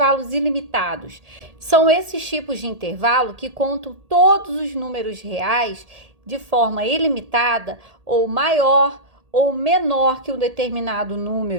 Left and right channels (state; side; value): late; left; 1.8 ms